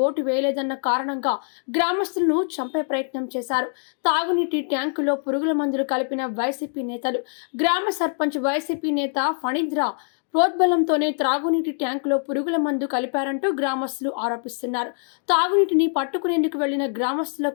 ఓటు వేయలేదన్న కారణంగా గ్రామస్తులను చంపే ప్రయత్నం చేశారు. తాగునీటి ట్యాంకులో పురుగుల మందులు కలిపిన వైసీపీ నేతలు. గ్రామ సర్పంచ్ వైసీపీ నేత ఫణీంద్ర ప్రోద్బలంతోనే త్రాగునీటి ట్యాంకులో పురుగుల మందు కలిపారంటూ గ్రామస్తులు ఆరోపిస్తున్నారు. తాగునీటిని పట్టుకునేందుకు వెళ్లిన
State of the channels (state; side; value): silent; right; 63 dB below the other